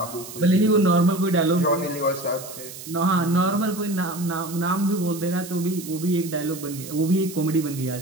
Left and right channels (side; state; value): right; noise; hiss, 13 dB below the sound